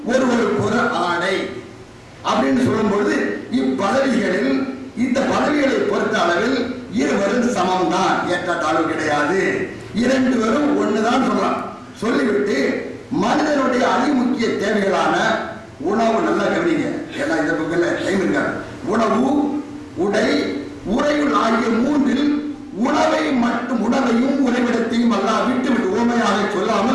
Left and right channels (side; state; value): both; identical; correlation 1.00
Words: ஒருவருக்கு ஒரு ஆடை அப்படின்னு சொல்லும் பொழுது இப்பதவிகளில் இந்த பதவிகளை பொறுத்த அளவில் இருவரும் சமம் தான், ஏற்றத்தாழ்வு கிடையாது, இரண்டு பேரும் ஒண்ணுதான் சொல்லலாம். சொல்லிவிட்டு மனிதனுடைய அதிமுக்கிய தேவைகளான உணவு, நல்லா கவனிங்க, ஏன்னா இந்த பக்கத்துல டைம் இருக்காது, உணவு, உடை, உறையுள் ஆகிய மூன்றில் உணவையும் உறைவிடத்தையும் அல்லாஹ் விட்டு ஓமையாக